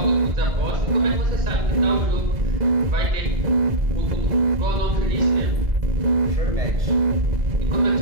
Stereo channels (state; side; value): late; left; 1.9 ms